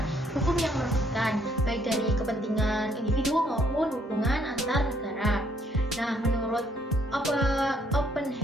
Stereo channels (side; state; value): both; normal; correlation 0.68